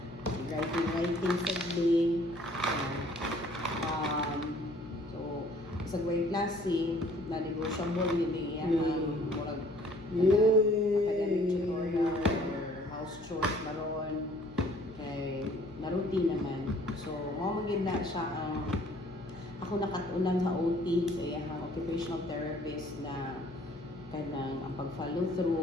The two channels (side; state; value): left; noise; hum, 20 dB below the sound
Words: Writing sagling. So, sa grade klase, na-negotiable yun yung murag academic tutorial or house chores maroon. Kay na-routine naman. So, magiging na siya ang ako nakatunan sa OT, so yung occupational therapist na kanang ang pag-follow